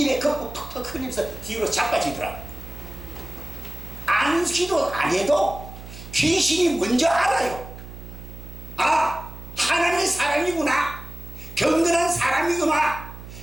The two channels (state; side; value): noise; right; hum, 13 dB below the sound